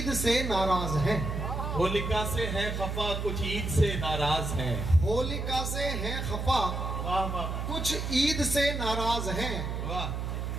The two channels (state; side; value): noise; right; hum, 3 dB below the sound